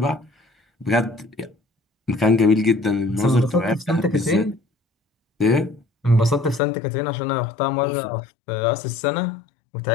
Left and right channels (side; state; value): right; drops out; at 6.6 s